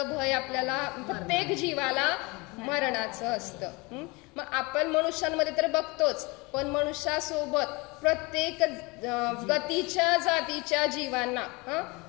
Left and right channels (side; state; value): right; quieter; 26.0 dB